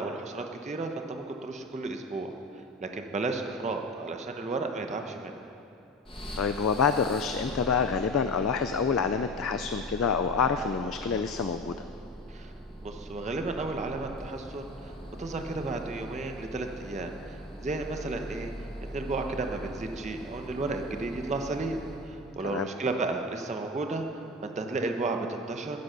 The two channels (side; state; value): both; normal; correlation 0.31